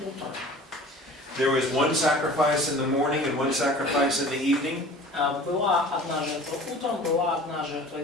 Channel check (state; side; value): normal; both; correlation 0.43